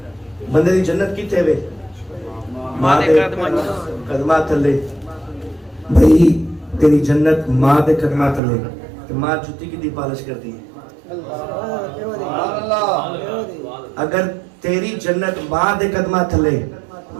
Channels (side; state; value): left; drops out; at 8.4 s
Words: بندے دی جنت کیتے وے ماں دے قدمہ تھلے. بھئی تیری جنت ماں دے قدمہ تھلے کہ ماں جتی کی دی پالش کرتی ہے. اگر تیری جنت ماں دے قدمہ تھلے